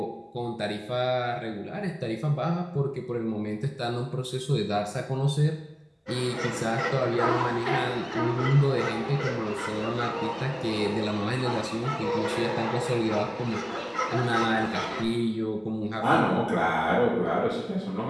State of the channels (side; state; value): both; identical; correlation 1.00